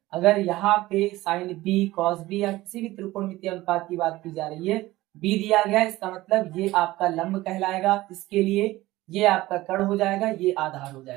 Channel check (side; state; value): left; quieter; 17.8 dB